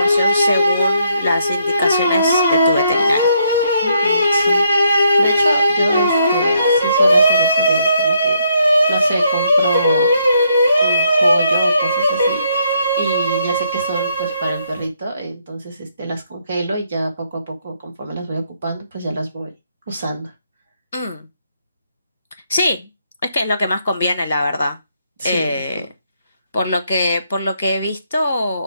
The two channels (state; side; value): inverted; both; correlation -0.73